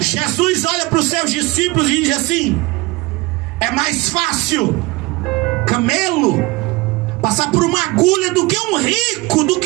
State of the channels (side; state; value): left; quieter; 22.4 dB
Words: olha para os seus discípulos e diz assim: é mais fácil camelo passar por uma agulha do que um rico, do